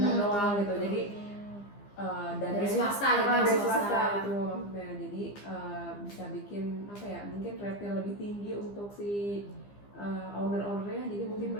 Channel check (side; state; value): right; late; 15 ms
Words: doang gitu, jadi Dari swasta gitu, dari swasta. swasta itu maksudnya, jadi bisa bikin mungkin rate-nya lebih tinggi untuk si owner-ownernya, jadi mungkin